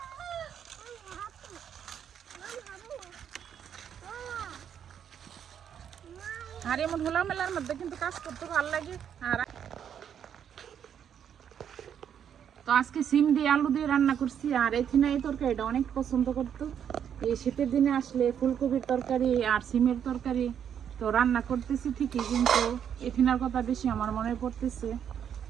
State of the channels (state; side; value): quieter; left; 8.7 dB